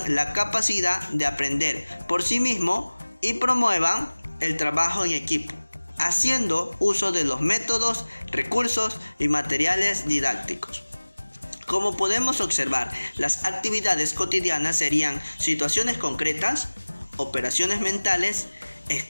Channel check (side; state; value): both; inverted; correlation -1.00